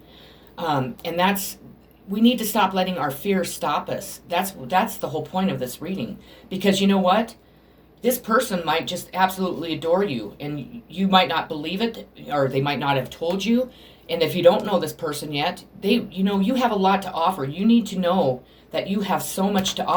And we need to stop letting our fears stop us. That's the whole point of this reading. Because you know what? This person might just absolutely adore you, and you might not believe it, or they might not have told you. And if you don't know this person yet, you have a lot to offer. You need to know that you have so much to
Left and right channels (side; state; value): both; identical; correlation 1.00